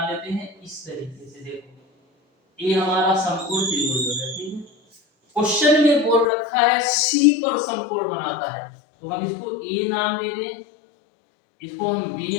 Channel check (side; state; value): right; drops out; at 6.2 s